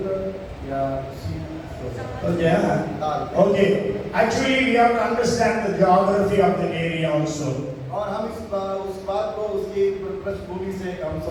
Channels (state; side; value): identical; both; correlation 1.00